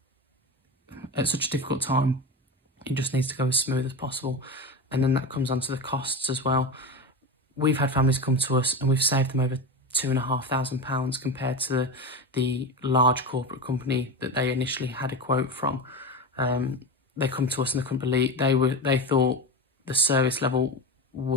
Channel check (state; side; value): normal; both; correlation 0.23